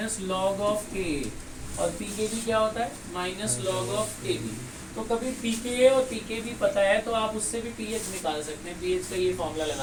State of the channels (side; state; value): both; identical; correlation 1.00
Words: log of Ka और pKb क्या होता है, माइनस लॉग ऑफ Kb। तो कभी pKa और pKb पता है तो आप उससे भी pH निकाल सकते हैं। pH का ये फॉर्मूला